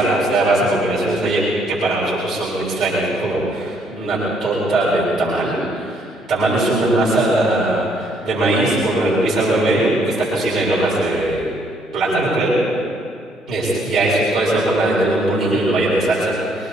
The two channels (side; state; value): both; normal; correlation 0.68